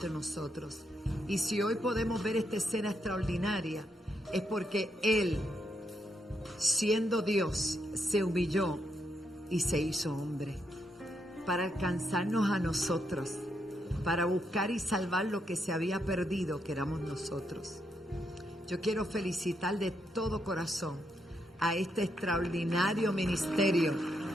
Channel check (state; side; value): normal; both; correlation 0.80